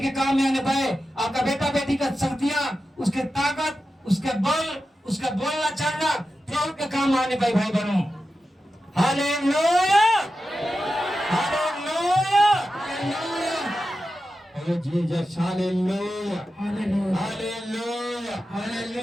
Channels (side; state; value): both; normal; correlation 0.92